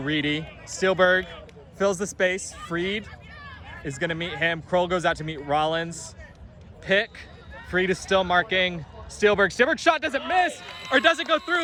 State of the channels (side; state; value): both; identical; correlation 1.00